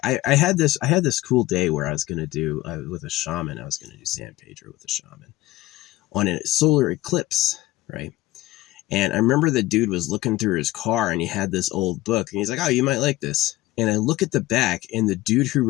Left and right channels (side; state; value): right; quieter; 17.5 dB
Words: I had this cool day where I was going to do with a shaman. I was going to do San Pedro with a shaman on a solar eclipse, right? And I remember the dude was looking through his car and he had this old book and he's like, oh, you might like this. And I look at the back and the dude who